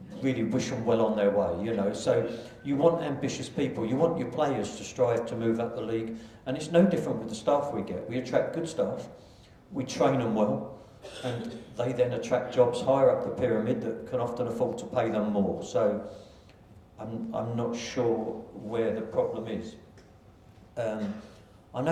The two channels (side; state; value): both; identical; correlation 1.00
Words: really wish them well on their way, you know. So you want ambitious people, you want your players to strive to move up the league, and it's no different with the staff we get. We attract good staff, we train them well, and they then attract jobs higher up the pyramid that can often afford to pay them more. So I'm not sure where the problem is. I